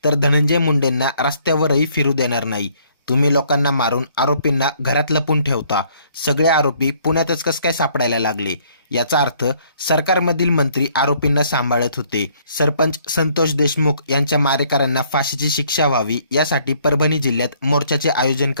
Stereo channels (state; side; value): inverted; both; correlation -0.64